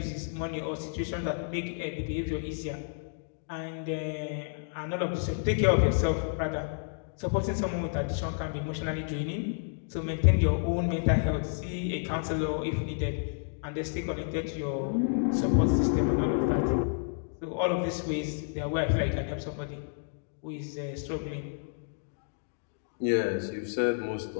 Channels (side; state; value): right; silent; digital silence